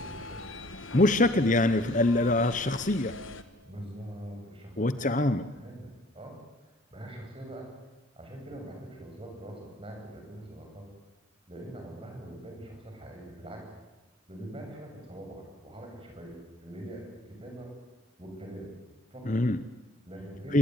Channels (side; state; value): both; normal; correlation 0.55